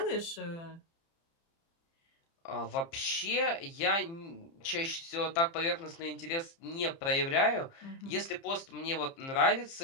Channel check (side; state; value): right; late; 30 ms